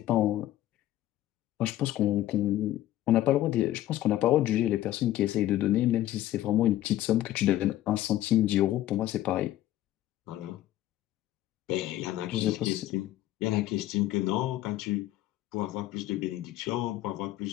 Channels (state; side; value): quieter; right; 14.2 dB